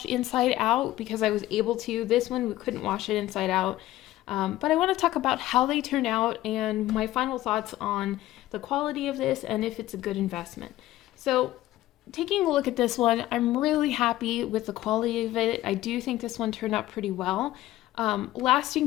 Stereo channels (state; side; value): quieter; right; 15.4 dB